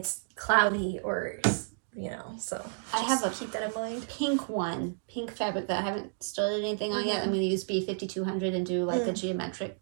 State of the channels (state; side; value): silent; left; digital silence